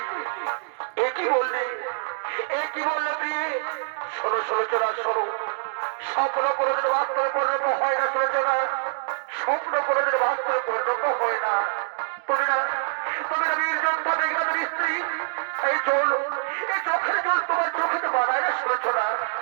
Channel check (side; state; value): left; silent; digital silence